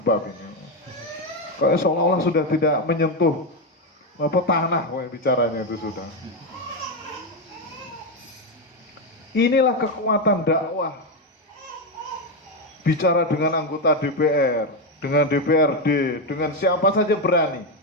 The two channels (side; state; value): both; normal; correlation 0.08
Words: ini. Kayak seolah-olah sudah tidak menyentuh tanah kayak bicaranya itu sudah. Inilah kekuatan dakwah. Bicara dengan anggota DPR, dengan DPRD, dengan siapa saja berani.